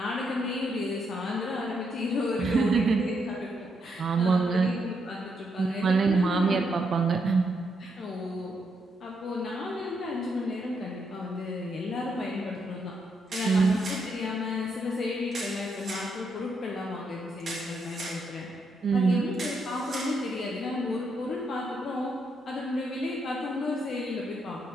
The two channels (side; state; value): both; normal; correlation 0.78